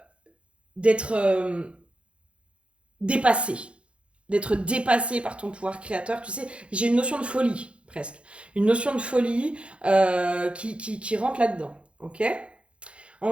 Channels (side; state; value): left; late; 0.059 ms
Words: d'être dépassé. D'être dépassé par ton pouvoir créateur. Tu sais, j'ai une notion de folie, presque. Une notion de folie qui rentre là-dedans. Ok ?